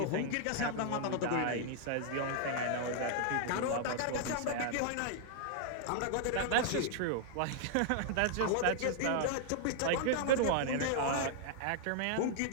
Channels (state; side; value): different; both; correlation -0.01